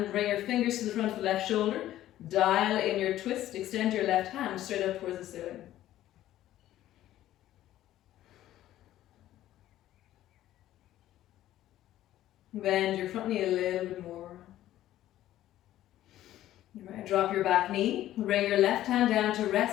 bring your fingers to the front of the left shoulder. Dial in your twist, extend your left hand straight up towards the ceiling. Bend your front knee a little bit more. Right, drop your back knee. Bring your left hand down to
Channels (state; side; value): quieter; right; 13.5 dB